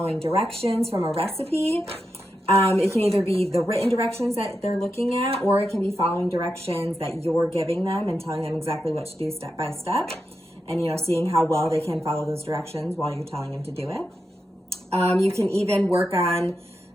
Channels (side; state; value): both; normal; correlation 0.87